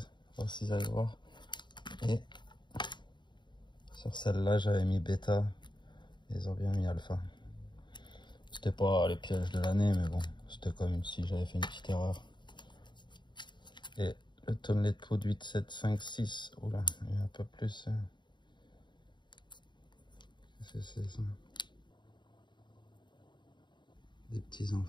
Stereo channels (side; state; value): right; late; 0.22 ms